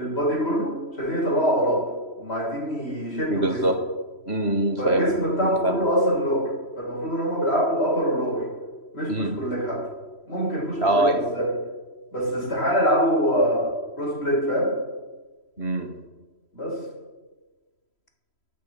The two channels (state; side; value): late; right; 3.1 ms